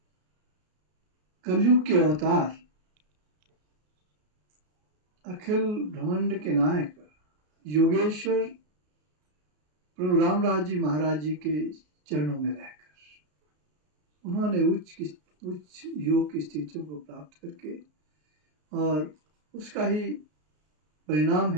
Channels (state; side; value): late; left; 33 ms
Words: कलयुग के अवतार अखिल ब्रह्मांड के नायक योगेश्वर प्रभु रामराज जी महाराज जी के चरणों में रहकर उन्होंने उच्च योग की स्थितियों को प्राप्त करके, और उसका ही परिणाम